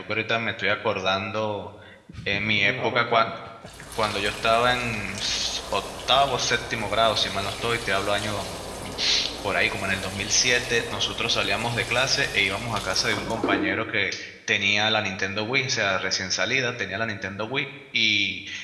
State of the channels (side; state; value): both; identical; correlation 1.00